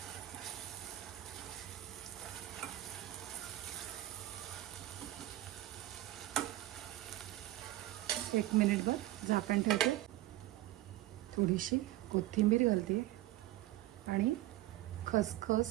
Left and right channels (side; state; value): left; quieter; 15.7 dB